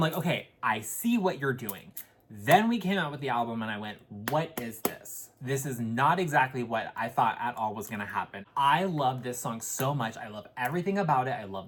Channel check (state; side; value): identical; both; correlation 1.00